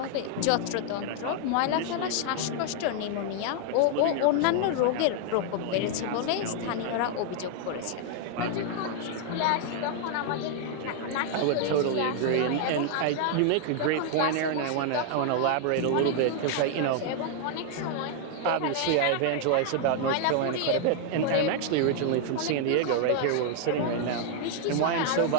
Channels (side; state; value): both; different; correlation 0.00